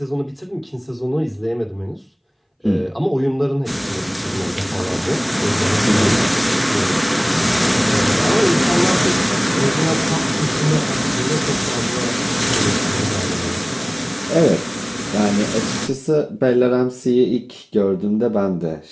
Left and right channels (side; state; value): both; identical; correlation 1.00